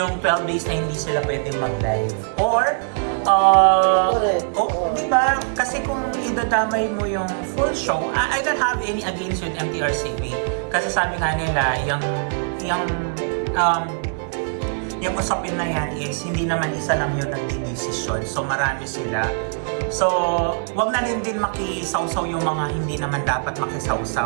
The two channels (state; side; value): silent; left; digital silence